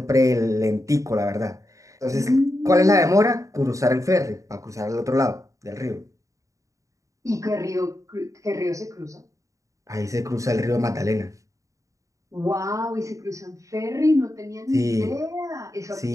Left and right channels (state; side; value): late; left; 0.16 ms